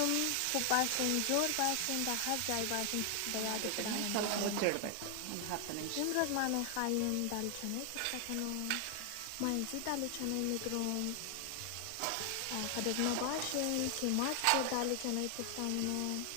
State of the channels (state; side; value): different; both; correlation 0.00